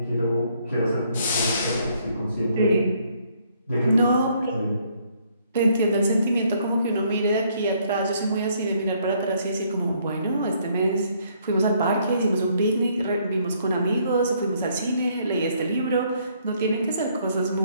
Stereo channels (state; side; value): inverted; both; correlation -0.67